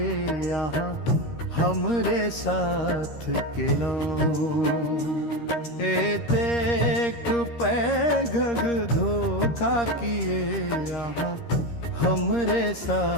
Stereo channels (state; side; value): late; right; 13 ms